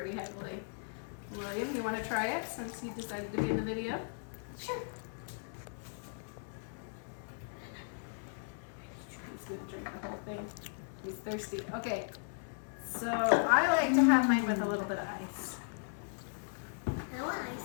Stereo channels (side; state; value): right; silent; digital silence